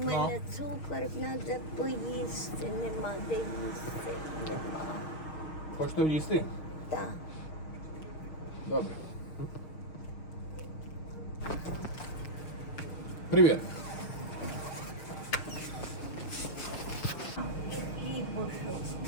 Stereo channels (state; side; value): late; right; 6.3 ms